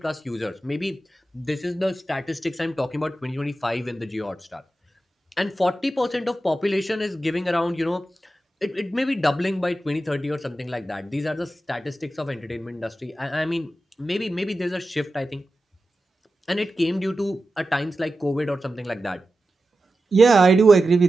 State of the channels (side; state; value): both; normal; correlation 0.92